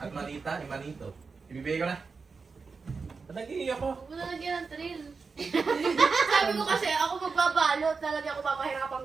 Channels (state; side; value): quieter; left; 4.8 dB